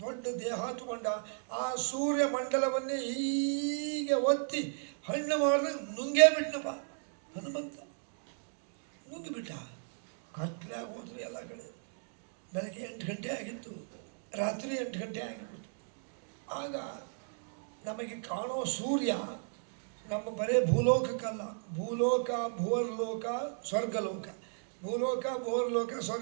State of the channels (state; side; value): silent; left; digital silence